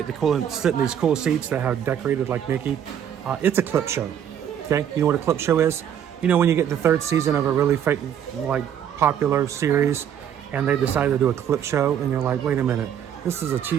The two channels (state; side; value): quieter; left; 9.3 dB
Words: to sit in these cool seats that have decorated like Mickey. It's a clip show. Okay, you know what a clip show is? You know when you get the third season of a really popular series, and they decide to do a clip show, and you're like, wait a minute, this is a